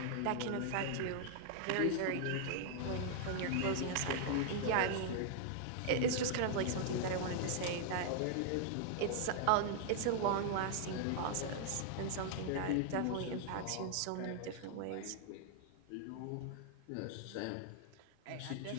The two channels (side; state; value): both; different; correlation -0.01